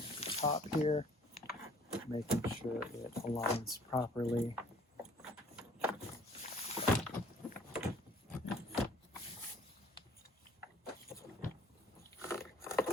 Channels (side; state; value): both; normal; correlation 0.55